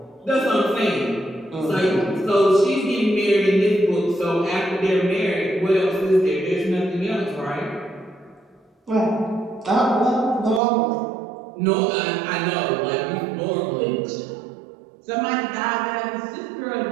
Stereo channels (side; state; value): left; drops out; at 10.6 s